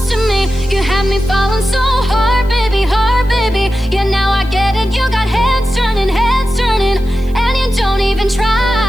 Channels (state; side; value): noise; left; hiss, 28 dB below the sound